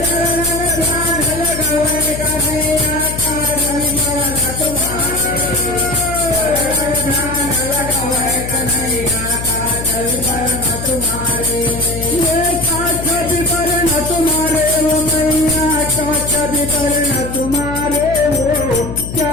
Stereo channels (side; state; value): left; noise; hum, 8 dB below the sound